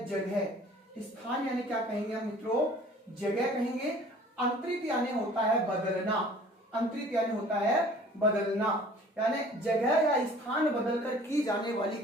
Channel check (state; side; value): normal; both; correlation 0.50